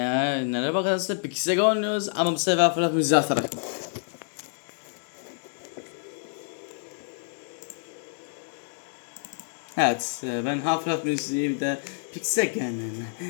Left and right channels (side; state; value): right; silent; digital silence